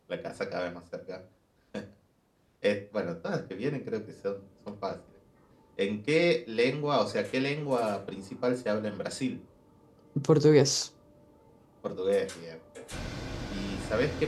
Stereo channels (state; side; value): identical; both; correlation 1.00